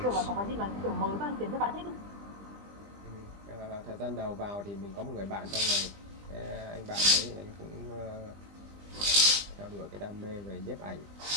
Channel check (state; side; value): late; left; 20 ms